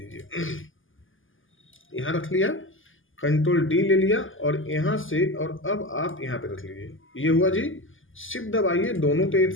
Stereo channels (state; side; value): late; right; 0.58 ms